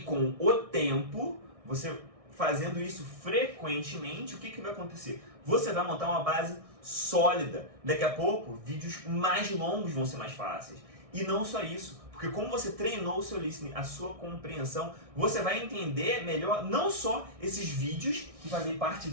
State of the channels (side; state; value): left; late; 1.6 ms